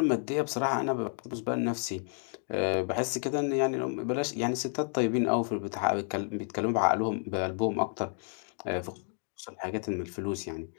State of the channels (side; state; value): right; silent; 57 dB below the other